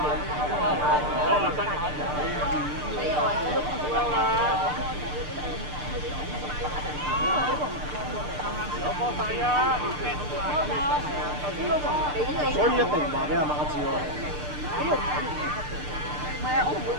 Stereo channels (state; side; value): late; left; 6.7 ms